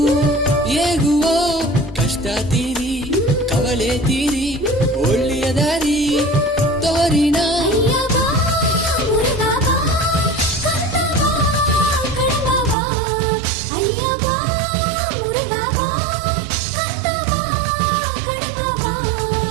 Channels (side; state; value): left; drops out; at 12.8 s